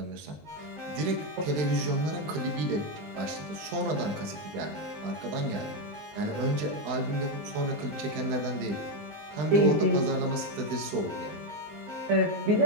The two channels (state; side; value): late; left; 20 ms